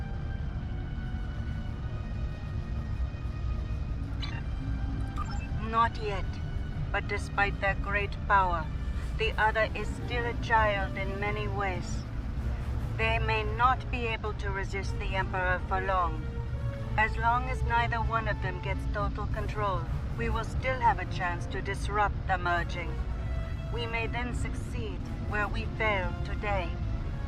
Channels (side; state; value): both; identical; correlation 1.00